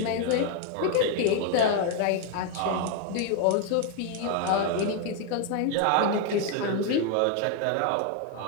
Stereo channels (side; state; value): both; different; correlation 0.01